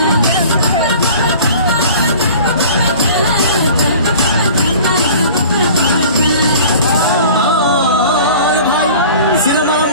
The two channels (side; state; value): both; inverted; correlation -0.43